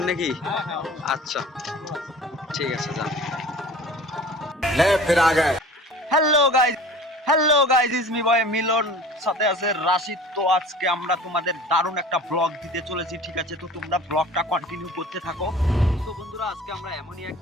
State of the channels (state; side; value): normal; both; correlation 0.43